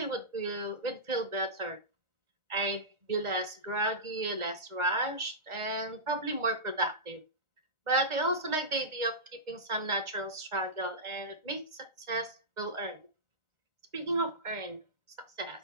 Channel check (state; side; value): late; left; 1.4 ms